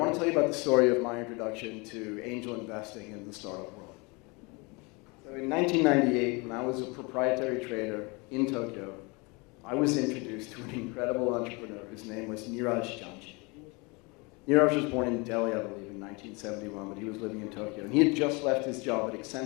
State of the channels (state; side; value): quieter; right; 28.2 dB